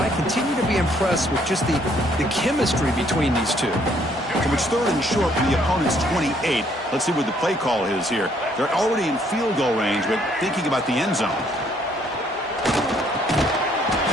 I continue to be impressed with just the chemistry between these two. So it's 3rd and short from the opponent's 28. Let's see what the play call is here. They're already in field goal range, but thinking about the end zone.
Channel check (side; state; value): both; normal; correlation 0.66